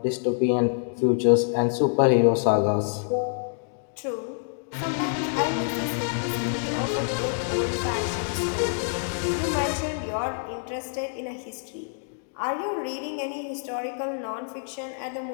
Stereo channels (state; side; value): silent; right; digital silence